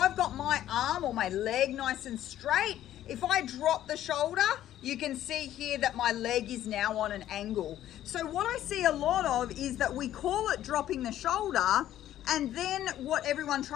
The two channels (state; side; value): quieter; right; 12.4 dB